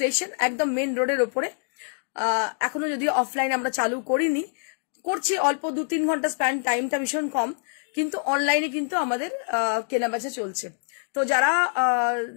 একদম মেন রোডের ওপরে। এখনো যদিও অফলাইন আমরা চালু করিনি, করছি অল্প 2-3 ঘন্টা স্প্যান, টাইমটা ভীষণ কম, কিন্তু অনলাইনে কিন্তু আমাদের কেনাবেচা চলছে। তো যারা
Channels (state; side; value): silent; right; 61 dB below the other